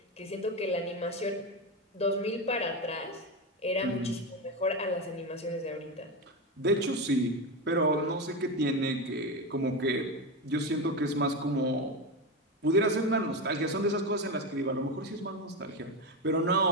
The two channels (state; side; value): normal; both; correlation 0.16